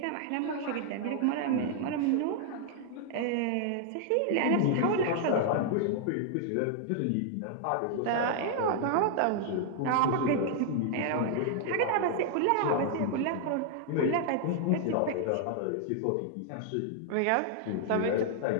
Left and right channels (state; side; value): different; both; correlation -0.01